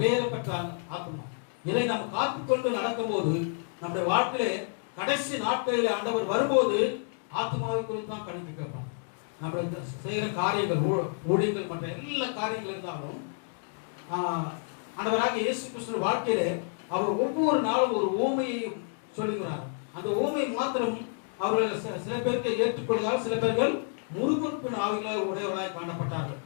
ஆத்மா. இதை நாம் காத்துக்கொண்டு நடக்கும் போது நம்முடைய வாழ்க்கையிலே கடைசி நாட்களில் ஆண்டவர் வரும்போது ஆத்மாவை குறித்து தான் கணக்கு கேட்பான். நம்ம செய்கிற காரியங்கள், ஊழியர்கள், மற்ற எல்லா காரியங்கள் இருந்தாலும் ஆண்டவராக இயேசு கிறிஸ்துவின் வாழ்க்கையிலே அவர் ஒவ்வொரு நாளும் ஒரு ஊமையை சொல்லுகிறார். அந்த ஊமை மாத்திரம் அவர்கள் சில பேருக்கு ஏற்றுக்கொள்கிறார், சில பேர்கள் முறுமுறுப்பின் ஆவிகளை உடையவர்களாய் காணப்பட்டார்கள்.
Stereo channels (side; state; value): right; silent; 58 dB below the other